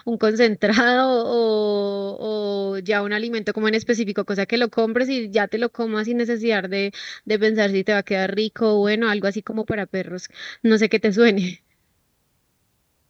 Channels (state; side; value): identical; both; correlation 1.00